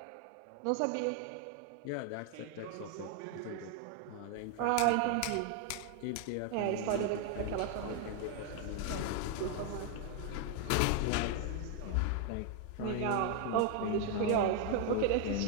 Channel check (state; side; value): different; both; correlation 0.00